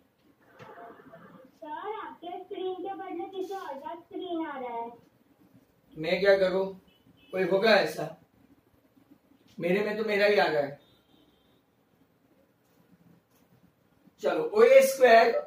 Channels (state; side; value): identical; both; correlation 1.00